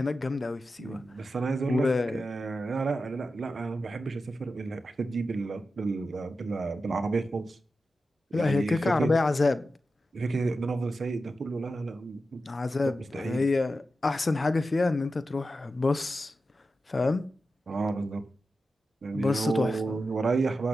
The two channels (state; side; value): normal; both; correlation 0.91